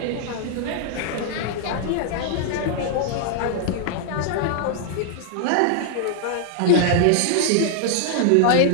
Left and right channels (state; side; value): different; both; correlation -0.01